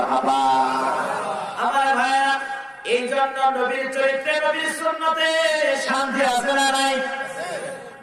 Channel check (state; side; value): identical; both; correlation 1.00